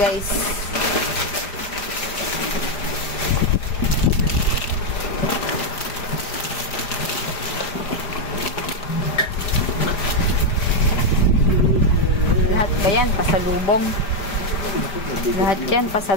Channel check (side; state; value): right; late; 5.0 ms